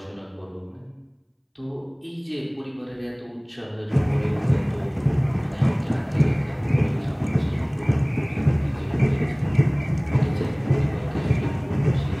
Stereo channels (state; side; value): identical; both; correlation 1.00